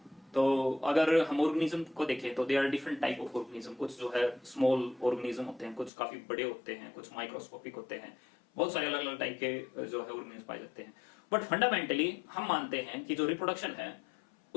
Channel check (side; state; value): right; drops out; at 5.9 s